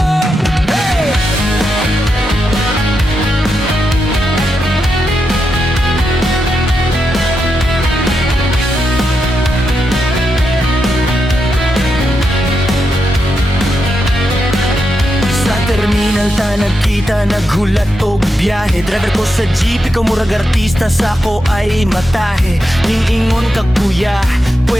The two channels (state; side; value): normal; both; correlation 0.85